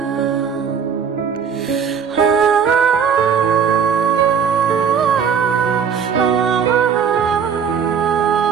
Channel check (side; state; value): left; quieter; 7.0 dB